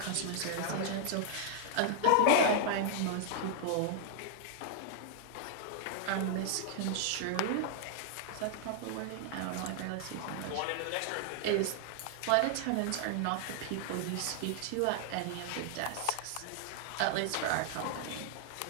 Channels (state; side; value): different; both; correlation -0.01